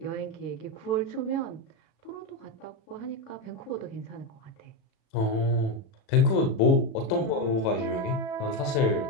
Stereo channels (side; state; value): right; late; 36 ms